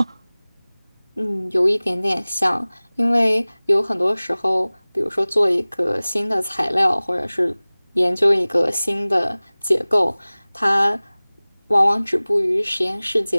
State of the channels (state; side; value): inverted; both; correlation -0.99